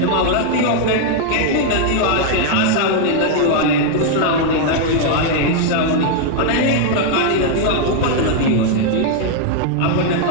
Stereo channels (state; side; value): different; both; correlation 0.00